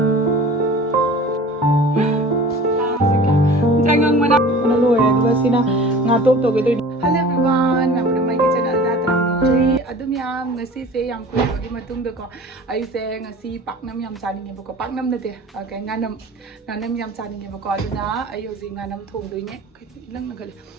Jangan mana lu ya juga sina ngatop to gitu. Hello everyone, namanya mai ke channel da tram nongri adum yam ngasi se yam ko gi matung da ko ai se ngasi paknam yam chaning nge ko paknam na te kai nganam yam chaning nge ko aduna ai hoji nganam thong doi ne lang na gal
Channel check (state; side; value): normal; both; correlation 0.42